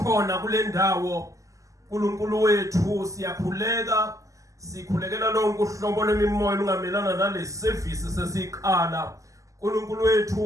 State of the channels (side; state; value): left; late; 0.16 ms